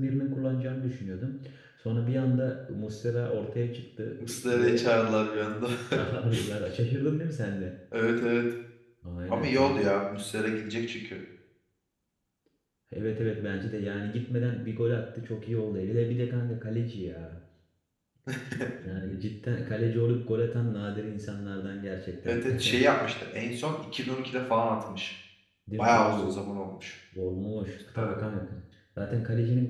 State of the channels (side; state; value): both; identical; correlation 1.00